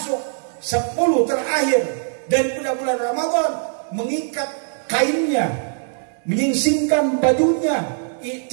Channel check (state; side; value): silent; left; 65 dB below the other